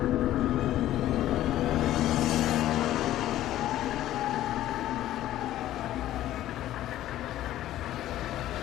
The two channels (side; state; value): right; quieter; 13.6 dB